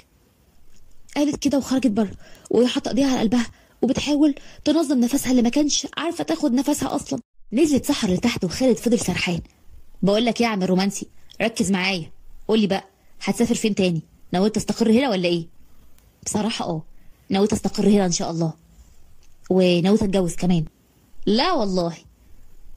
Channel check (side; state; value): both; identical; correlation 1.00